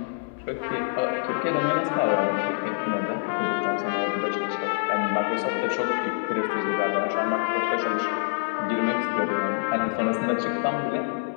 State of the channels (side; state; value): right; silent; 61 dB below the other